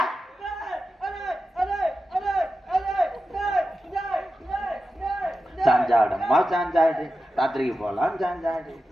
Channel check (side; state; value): both; normal; correlation 0.92